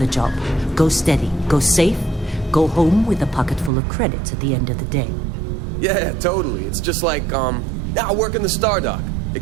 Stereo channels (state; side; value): drops out; left; at 3.7 s